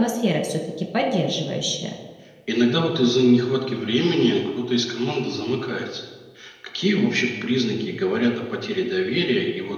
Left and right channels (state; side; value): identical; both; correlation 1.00